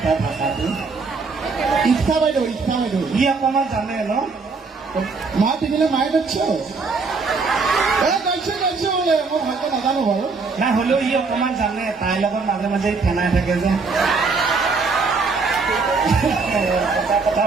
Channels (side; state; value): left; quieter; 4.4 dB